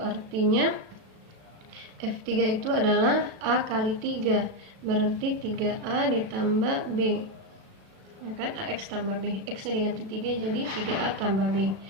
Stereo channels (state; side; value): late; left; 36 ms